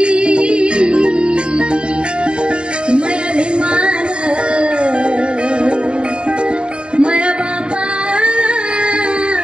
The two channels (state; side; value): late; left; 0.052 ms